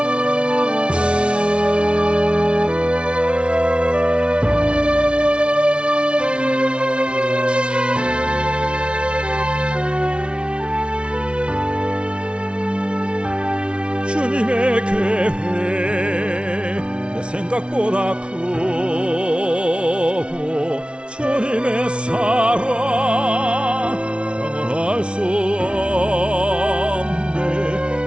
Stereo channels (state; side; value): late; left; 0.058 ms